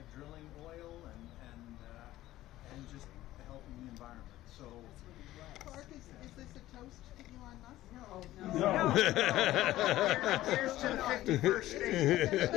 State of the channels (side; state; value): right; quieter; 15.2 dB